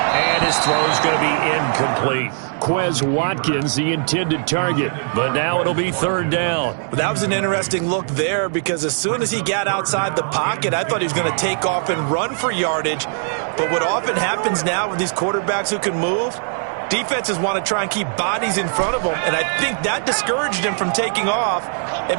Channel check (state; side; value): silent; left; digital silence